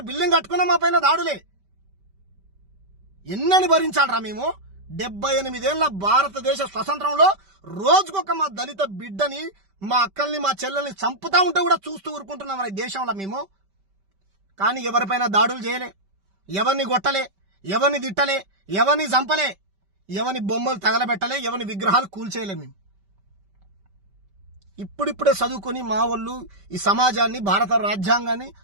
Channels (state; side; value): late; left; 5.1 ms